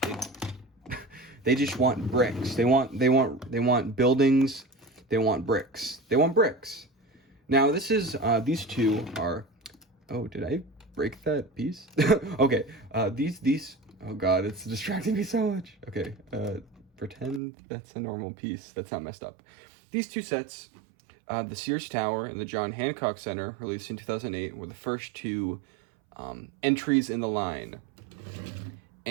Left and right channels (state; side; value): drops out; left; at 17.4 s